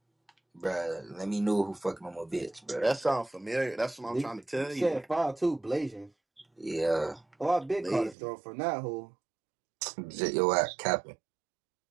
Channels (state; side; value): drops out; left; at 8.2 s